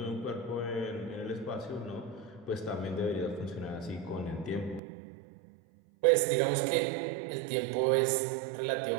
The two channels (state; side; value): drops out; left; at 4.8 s